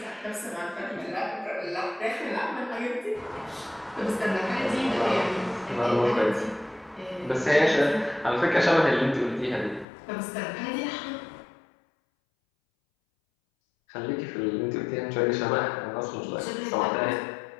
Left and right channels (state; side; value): drops out; right; at 9.9 s